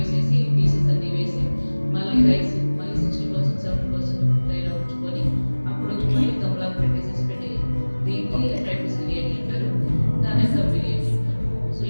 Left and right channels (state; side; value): inverted; both; correlation -1.00